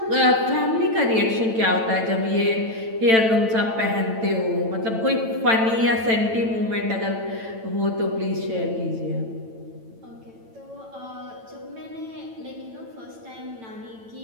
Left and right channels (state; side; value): late; left; 9.0 ms